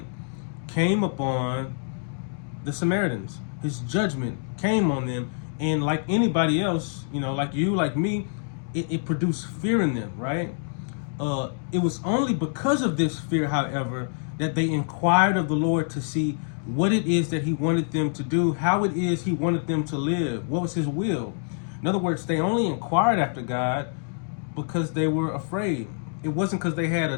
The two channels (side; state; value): right; silent; digital silence